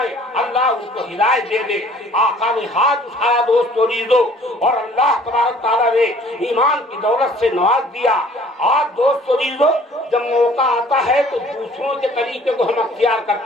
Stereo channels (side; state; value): both; normal; correlation 0.54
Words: اللہ ان کو ہدایت دے دے. آقا نے ہاتھ اٹھایا دوستو ریزو اور اللہ تبارک تعالیٰ نے ایمان کی دولت سے نواز دیا. آج دوستو ریزو جب موقع آتا ہے تو دوسروں کے طریقے کو ہم اختیار